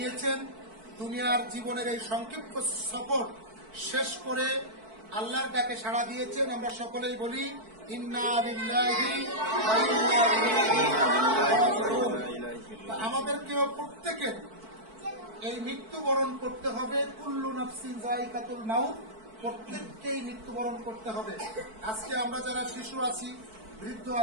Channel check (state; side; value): late; left; 4.5 ms